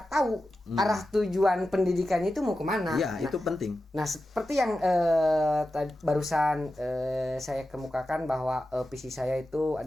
tahu arah tujuan pendidikannya itu mau kemana. Iya, itu penting. Nah, seperti yang barusan saya kemukakan bahwa visi saya itu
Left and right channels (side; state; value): both; normal; correlation 0.92